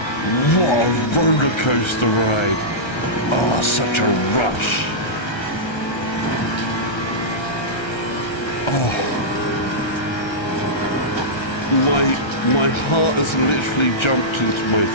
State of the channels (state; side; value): late; right; 1.3 ms